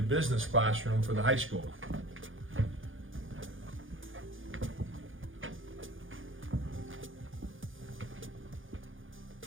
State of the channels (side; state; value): left; late; 0.58 ms